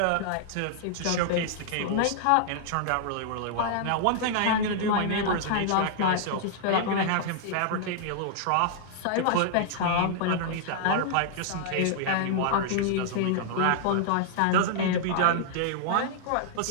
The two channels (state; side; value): different; both; correlation -0.01